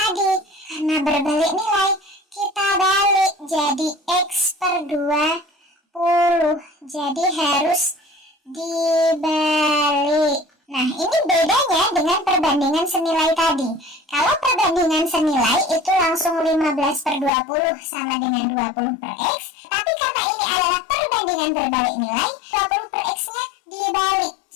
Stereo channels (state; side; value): drops out; right; at 17.3 s